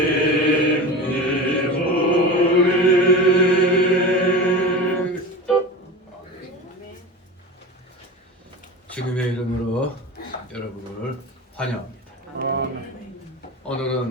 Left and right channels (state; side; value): normal; both; correlation 0.29